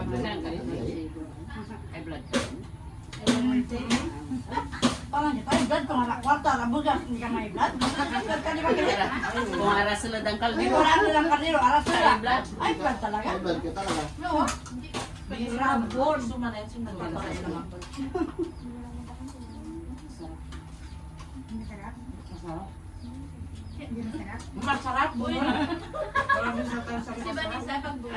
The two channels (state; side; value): identical; both; correlation 1.00